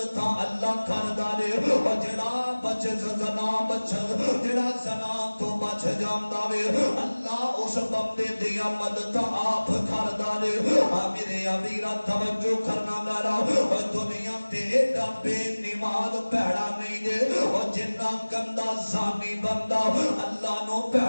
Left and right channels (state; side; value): inverted; both; correlation -1.00